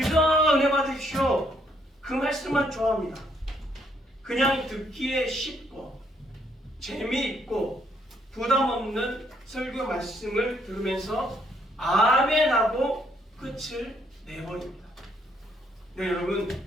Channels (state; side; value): normal; both; correlation 0.71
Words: 은혜 받으십시오. 그 말씀만 좋아합니다. 그냥 듣기에 쉽고 재미있고 부담 없는 설교 말씀을 들으면서 아멘하고 끝을 내버립니다. 네, 여러분,